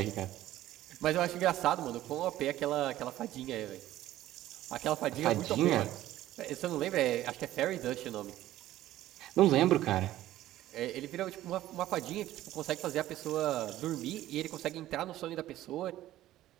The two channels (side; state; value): left; quieter; 14.3 dB